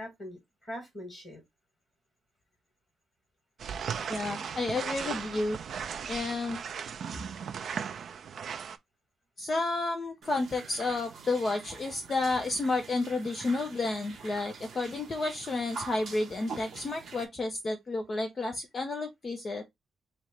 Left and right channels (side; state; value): both; normal; correlation 0.85